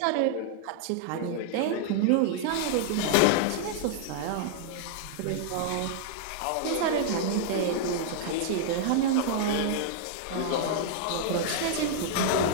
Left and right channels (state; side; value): different; both; correlation -0.01